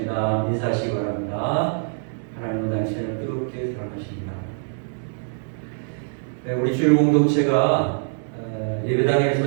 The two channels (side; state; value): left; silent; 63 dB below the other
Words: 인사하시기 바랍니다. 하나님은 당신을 뜨겁게 사랑하십니다. 우리 주일 공동체가